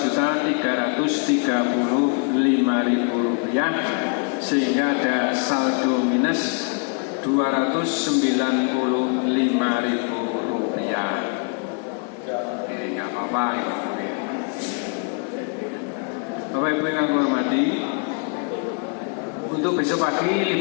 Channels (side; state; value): right; quieter; 37.6 dB